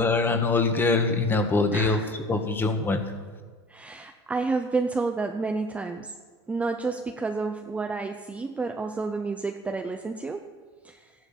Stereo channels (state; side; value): normal; both; correlation 0.48